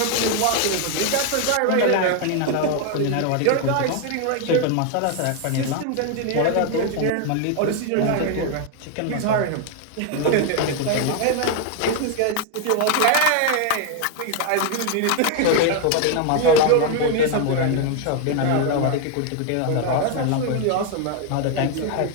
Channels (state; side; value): different; both; correlation 0.01